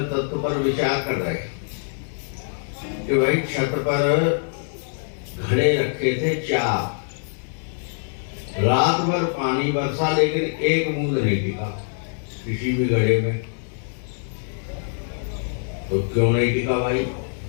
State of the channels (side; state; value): right; silent; digital silence